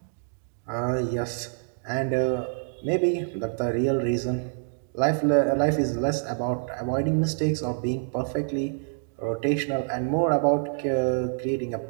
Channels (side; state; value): left; silent; digital silence